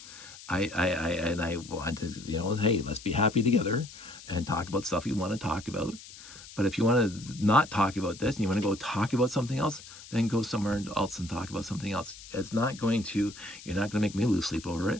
I want to, hey, let's be happy together and talk about stuff you want to talk about. But if you want to not talk about this and you want to go talk about something else, then go somewhere else and talk about something else. You're not going to make me lose sleep over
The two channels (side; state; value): left; noise; hiss, 17 dB below the sound